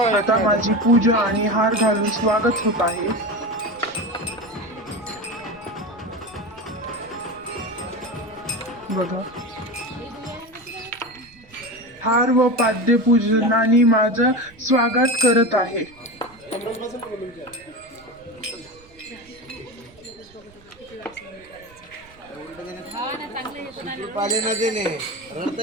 आता माझी पूजा आणि हार घालून स्वागत होत आहे. बघा, हार व पाद्य पूजनाने माझं स्वागत करत आहे. पाले न देणे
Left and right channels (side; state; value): right; noise; rumble, 26 dB below the sound